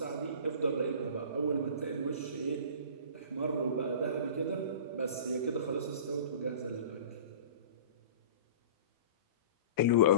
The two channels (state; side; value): inverted; both; correlation -0.39